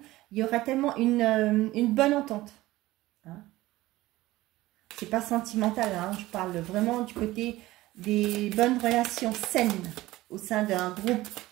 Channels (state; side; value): quieter; left; 17.5 dB